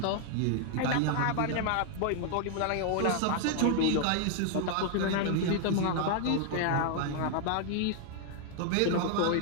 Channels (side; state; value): both; different; correlation 0.00